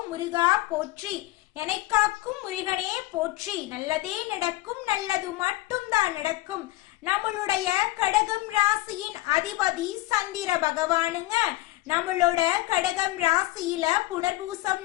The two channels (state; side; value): quieter; right; 18.1 dB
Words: முருகா போற்றி. என்னை காக்கும் முருகனே போற்றி. நல்லதே நடக்கும், நல்லது மட்டும்தான் நடக்கும். நம்மளுடைய கடகம் ராசியின் அதிபதி சந்திர பகவானுங்க. நம்மளோட கடகம் ராசியில புனர்பூசம்